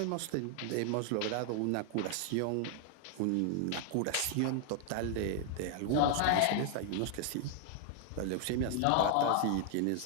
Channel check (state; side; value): different; both; correlation 0.00